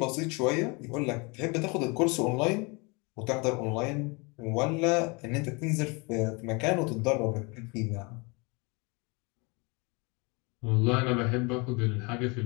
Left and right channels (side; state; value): right; quieter; 29.0 dB